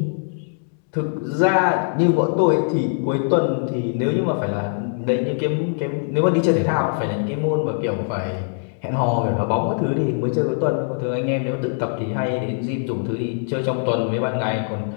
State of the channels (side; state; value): right; silent; digital silence